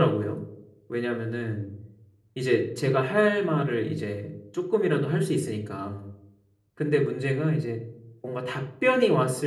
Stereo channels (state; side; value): identical; both; correlation 1.00